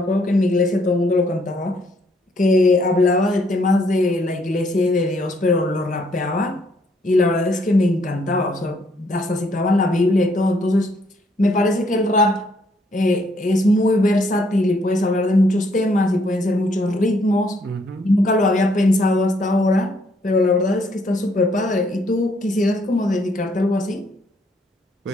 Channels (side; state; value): both; normal; correlation 0.69